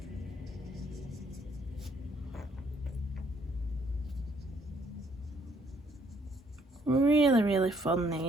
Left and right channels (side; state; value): both; normal; correlation 0.67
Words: Really, really fun,